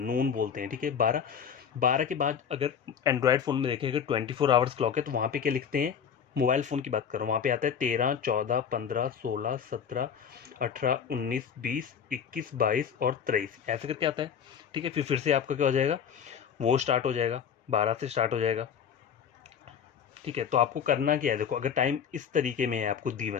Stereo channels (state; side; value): quieter; right; 7.7 dB